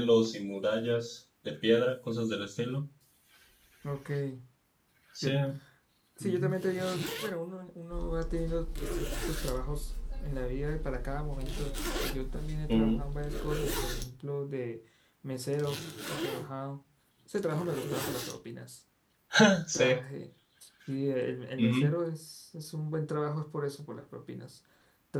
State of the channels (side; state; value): both; identical; correlation 1.00